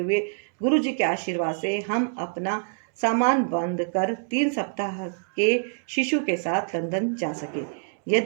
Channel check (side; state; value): left; silent; digital silence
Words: गुरुजी के आशीर्वाद से हम अपना सामान बंद कर 3 सप्ताह के शिशु के साथ लंदन जा सके।